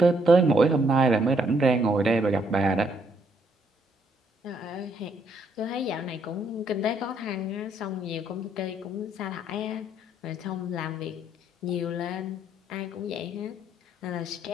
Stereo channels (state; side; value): normal; both; correlation 0.70